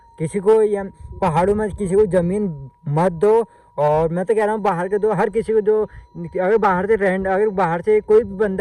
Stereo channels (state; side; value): identical; both; correlation 1.00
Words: किसी को या पहाड़ों में किसी को ज़मीन मत दो। और मैं तो कह रहा हूँ बाहर के दो, हर किसी को जो अगर बाहर से कोई भी